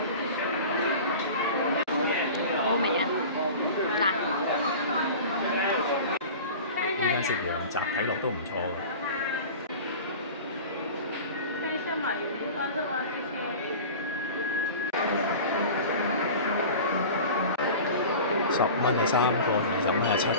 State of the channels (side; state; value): both; inverted; correlation -0.36